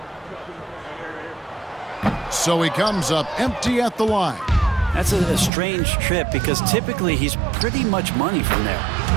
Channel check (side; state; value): left; drops out; at 5.5 s